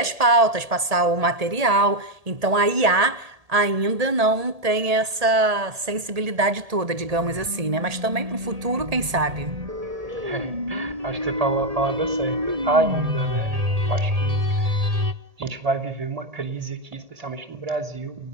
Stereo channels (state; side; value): late; left; 1.8 ms